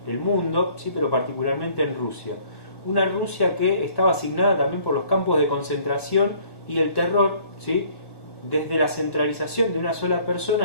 el mundo, sí, pero particularmente en Rusia. Una Rusia que estaba asignada también por los campos de concentración y el terror, ¿sí?, desde la centralización de una sola persona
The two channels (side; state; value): right; late; 1.1 ms